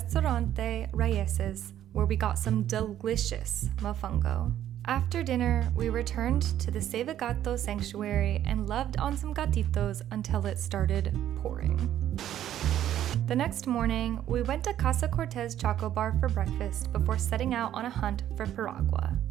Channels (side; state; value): left; quieter; 11.6 dB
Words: Raíces, where we got some delicious mofongo. After dinner, we returned to the Save Gato sanctuary and loved on some gatitos until it started pouring. The next morning, we went to Casa Cortez Choco Bar for breakfast before setting out on a hunt for piragua.